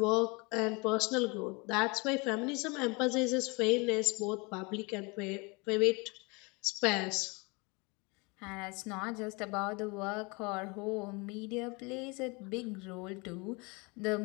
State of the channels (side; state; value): right; quieter; 28.5 dB